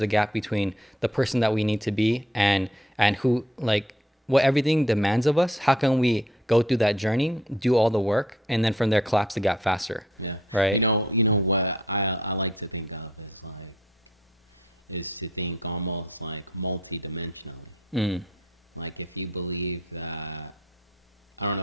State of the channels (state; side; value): normal; both; correlation 0.63